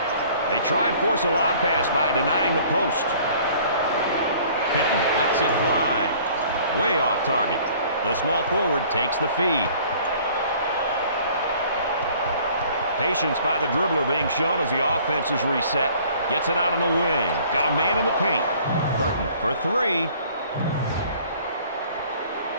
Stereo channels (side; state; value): both; inverted; correlation -0.53